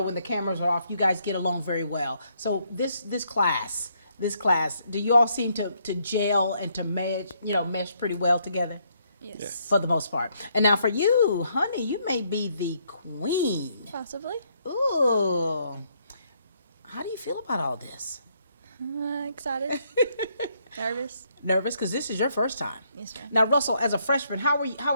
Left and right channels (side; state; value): both; inverted; correlation -0.72